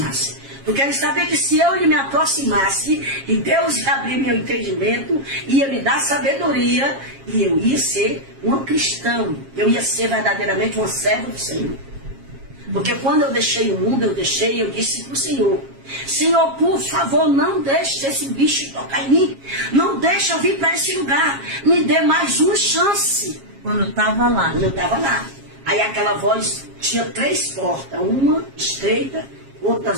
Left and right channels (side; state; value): left; late; 7.4 ms